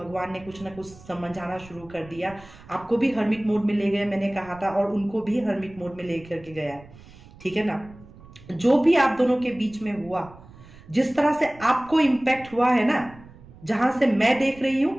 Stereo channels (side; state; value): right; noise; rumble, 21 dB below the sound